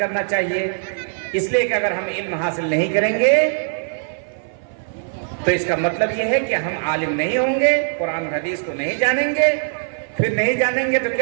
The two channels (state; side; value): silent; left; 57 dB below the other